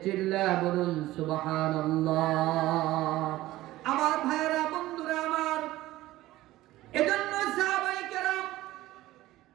চিল্লা বলুন সুবহানাল্লাহ। আমার ভাইরা, বন্ধুরা আমার, এজন্য সাহাবায়ে কেরাম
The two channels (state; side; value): quieter; left; 16.4 dB